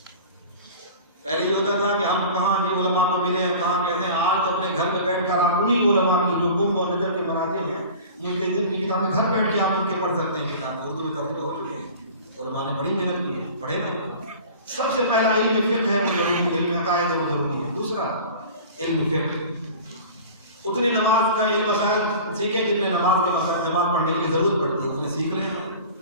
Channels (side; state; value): both; inverted; correlation -0.40